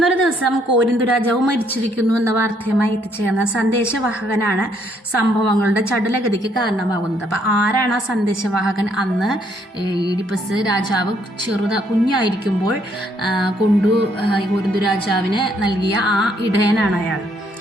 ദിവസം കോരിന്തു രാജാവ് മരിച്ചിരിക്കുന്നു എന്ന വാർത്തയുമായി എത്തിച്ചേർന്ന സന്ദേശവാഹകനാണ് സംഭവങ്ങളുടെ ചടുലഗതിക്ക് കാരണമാകുന്നത്. അപ്പം ആരാണ് ആ സന്ദേശവാഹകൻ? അന്ന് ഈഡിപ്പസ് രാജാവ് കുഞ്ഞായിരിക്കുമ്പോൾ കോരിന്തു രാജാവിന് നൽകിയ ആ ഇടയനാണ് അയാൾ.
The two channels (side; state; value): both; normal; correlation 0.69